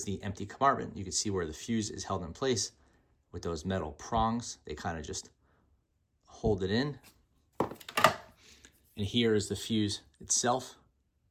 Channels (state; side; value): identical; both; correlation 1.00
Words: the empty compartment. You can see where the fuse is held in place with those metal prongs. They kind of just hold it in. And here is the fuse itself.